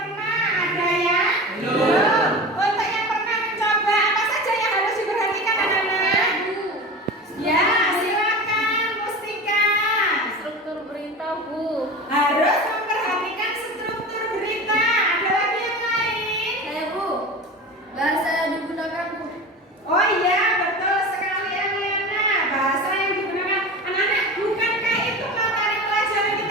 ada yang belum. Untuk yang pernah mencoba, apa saja yang harus diperhatikan anak-anak? Ya, silakan Mustika. Struktur berita, Bu. Harus memperhatikan struktur berita. Ada lagi yang lain? Saya, Bu. Bahasa yang digunakan, Bu. Oh iya, betul sekali Eliana. Bahasa yang digunakan anak-anak, bukankah itu materi pelajaran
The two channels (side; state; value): both; normal; correlation 0.31